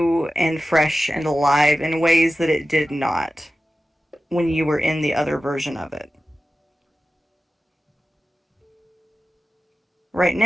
and fresh and alive in ways that it did not when you were in the other version of it. Right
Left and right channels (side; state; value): both; normal; correlation 0.94